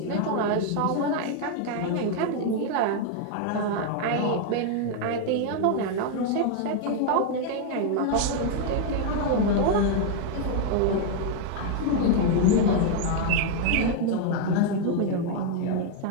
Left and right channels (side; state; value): both; different; correlation 0.00